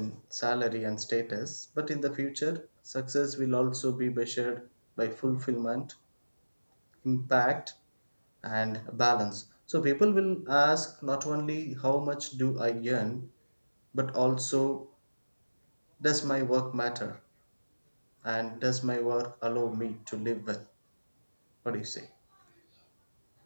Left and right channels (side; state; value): both; inverted; correlation -1.00